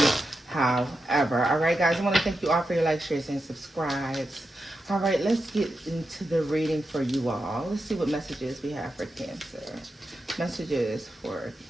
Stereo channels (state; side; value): normal; both; correlation 0.88